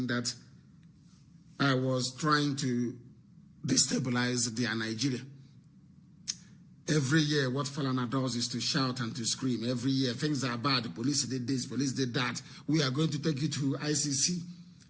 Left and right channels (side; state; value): both; identical; correlation 1.00